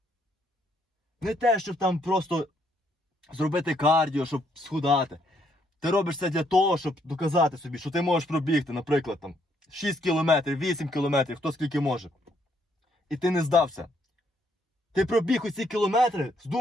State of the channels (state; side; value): normal; both; correlation 0.71